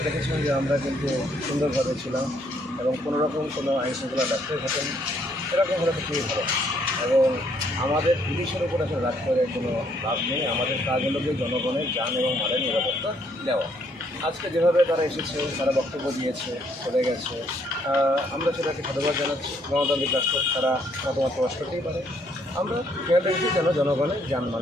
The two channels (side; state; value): both; normal; correlation 0.69